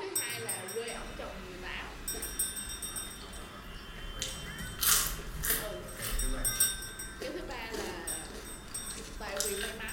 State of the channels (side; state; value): both; identical; correlation 1.00